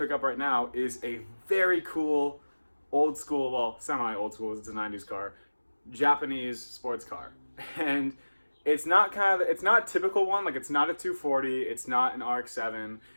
up right now is a very cool, old school, well, semi-old school, it's a 90s car, Japanese sports car. And it's not a typical one, like it's not a 240, it's not an RX-7.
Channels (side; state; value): both; inverted; correlation -1.00